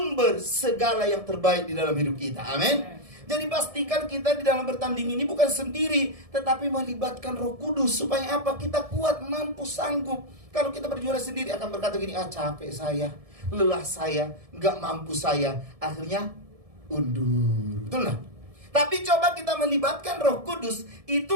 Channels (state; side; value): late; left; 1.7 ms